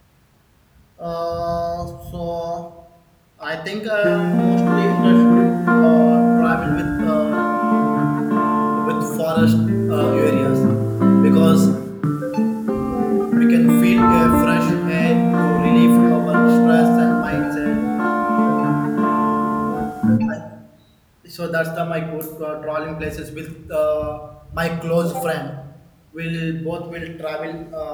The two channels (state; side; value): identical; both; correlation 1.00